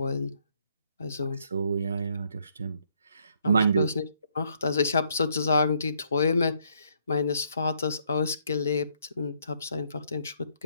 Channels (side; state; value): both; inverted; correlation -0.70